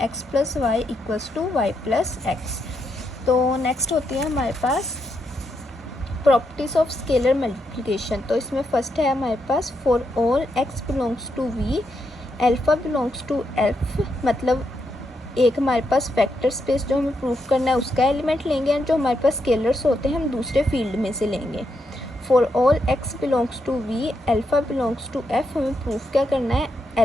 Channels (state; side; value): normal; both; correlation 0.81